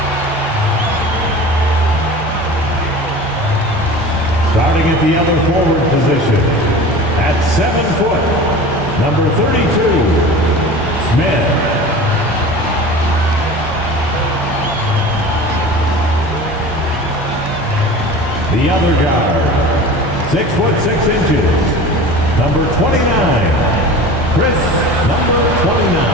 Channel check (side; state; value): both; normal; correlation 0.37